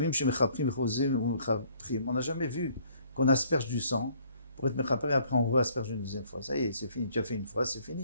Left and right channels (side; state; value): both; inverted; correlation -0.62